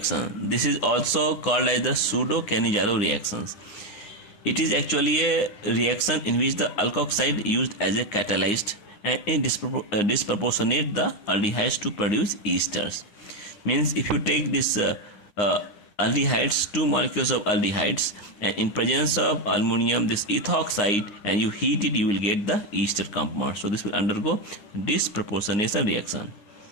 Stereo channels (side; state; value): right; late; 9.7 ms